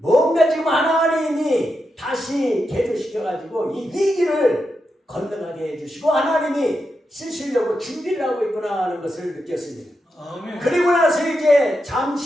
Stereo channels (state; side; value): normal; both; correlation 0.86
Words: 지금 하나님이 다시 개조시켜가지고 이 위기를 건너가게 해주시고 하나님이 쓰시려고 준비를 하고 있구나 하는 것을 느꼈습니다. 그리고 나서 이제